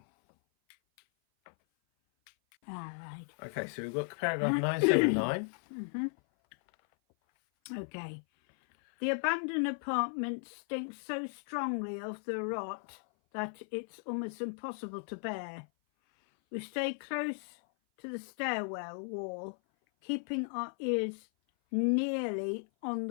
All right. Okay, so we've got paragraph 979. Okay. The abandoned apartment stinks so strongly of the rot that it's almost impossible to bear. We stay close to the stairwell wall, keeping our ears nearly on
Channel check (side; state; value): right; silent; 54 dB below the other